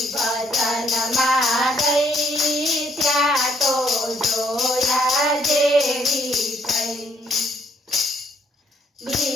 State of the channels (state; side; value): normal; both; correlation 0.69